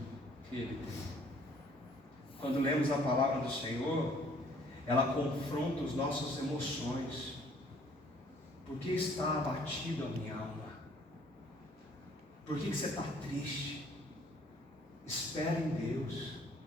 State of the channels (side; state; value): both; normal; correlation 0.59